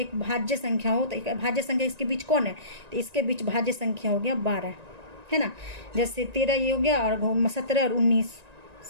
भाज्य संख्या हो, तो एक भाज्य संख्या इसके बीच कौन है, तो इसके बीच भाज्य संख्या हो गया 12, है ना। जैसे 13 ये हो गया, और 17 और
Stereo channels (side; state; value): left; late; 1.9 ms